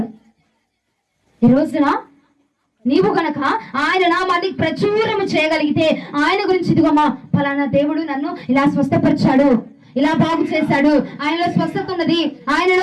ఈ రోజున నీవు గనక ఆయన నామాన్ని ప్రచురం చేయగలిగితే, ఆయన గురించి ఇదిగోమ్మా ఫలానా దేవుడు నన్ను ఇలా స్వస్థపరిచాడు, ఇలా బాగు చేశాడు, ఆయనలో స్వస్థత ఉన్నది,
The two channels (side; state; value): both; identical; correlation 1.00